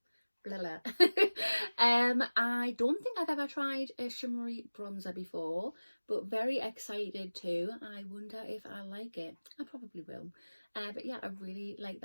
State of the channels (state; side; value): inverted; both; correlation -1.00